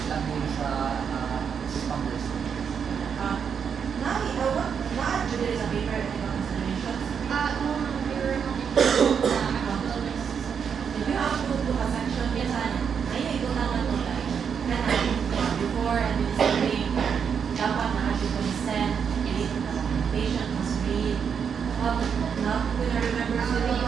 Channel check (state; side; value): quieter; left; 7.0 dB